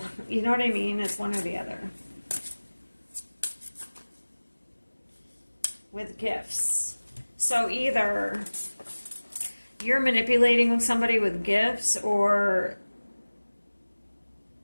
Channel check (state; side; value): inverted; both; correlation -1.00